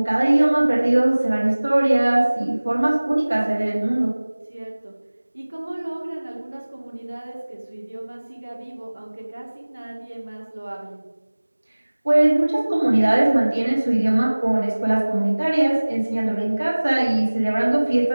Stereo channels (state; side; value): inverted; both; correlation -1.00